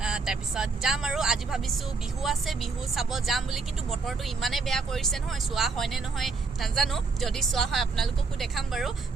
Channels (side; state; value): left; quieter; 4.3 dB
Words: তাৰপিছত যাম আৰু আজি ভাবিছো বিহু আছে বিহু চাব যাম বুলি কিন্তু বতৰটো ইমানে বেয়া কৰিছে নহয় চোৱা হয় নে নহয় নাজানো যদি চোৱা হয় আপোনালোককো দেখাম বাৰু